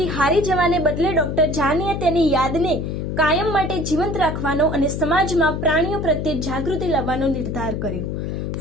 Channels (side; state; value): left; noise; hum, 3 dB below the sound